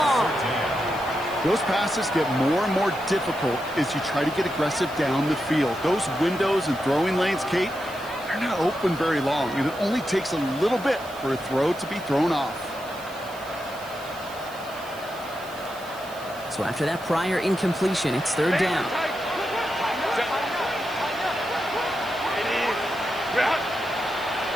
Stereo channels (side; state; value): right; noise; hiss, 20 dB below the sound